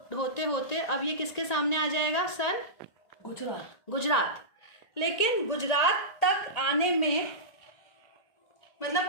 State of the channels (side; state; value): right; late; 1.9 ms